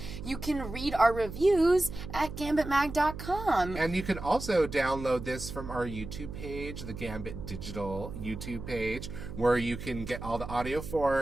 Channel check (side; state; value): right; noise; hum, 9 dB below the sound